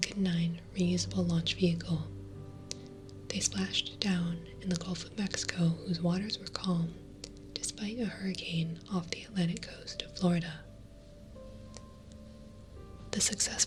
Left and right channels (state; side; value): identical; both; correlation 1.00